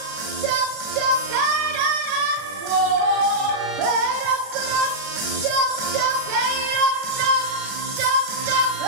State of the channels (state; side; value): late; left; 36 ms